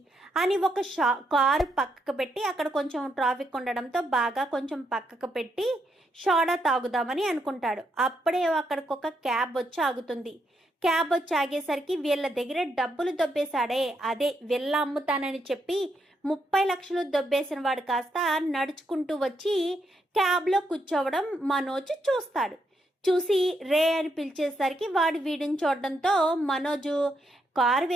అని ఒక కారు పక్కకు పెట్టి, అక్కడ కొంచెం ట్రాఫిక్ ఉండడంతో బాగా కొంచెం పక్కకు పెట్టి సోడా తాగుదామని అనుకుంటాడు. అప్పుడే అక్కడికి ఒక క్యాబ్ వచ్చి ఆగుతుంది. క్యాబ్ వచ్చి ఆగేసరికి వీళ్ళ దగ్గర డబ్బులు దొబ్బేశాడే, అదే వీళ్ళ అమ్ముతానని చెప్పి 30 లక్షలు దొబ్బేసిన వాడు కాస్త నడుచుకుంటూ వచ్చి క్యాబ్లో కూర్చోవడం మనోజ్ చూస్తాడు. చూసి రే అని పిలిచేసరికి వాడు వీడిని చూడడంతో మనోజు కారు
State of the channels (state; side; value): normal; both; correlation 0.79